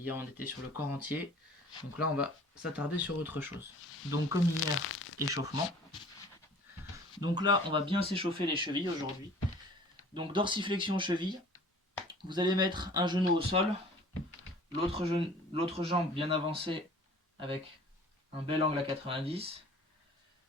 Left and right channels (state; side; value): normal; both; correlation 0.48